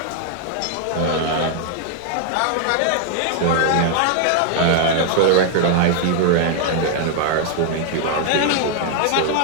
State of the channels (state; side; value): different; both; correlation 0.00